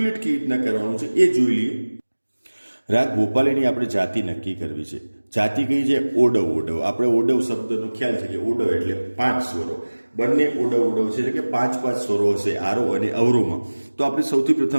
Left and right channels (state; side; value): inverted; both; correlation -1.00